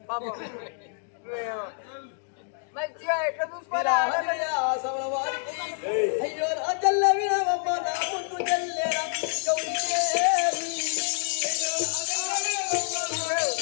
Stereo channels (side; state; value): right; silent; 60 dB below the other